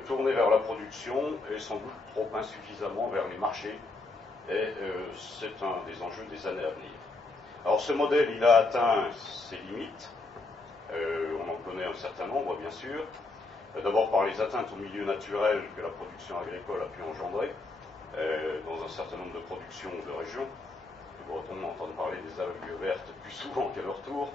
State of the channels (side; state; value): right; quieter; 3.4 dB